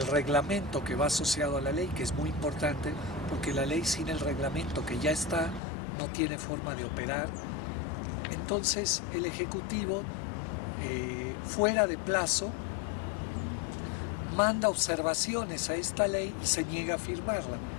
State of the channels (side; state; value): right; drops out; at 5.6 s